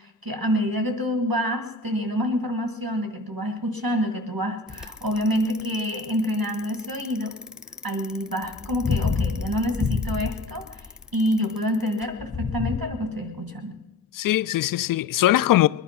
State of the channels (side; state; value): right; quieter; 3.3 dB